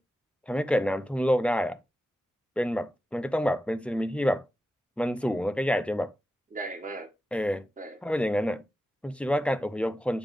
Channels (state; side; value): normal; both; correlation 0.92